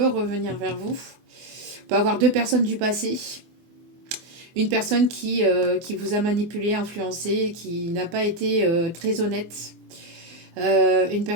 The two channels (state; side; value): late; left; 24 ms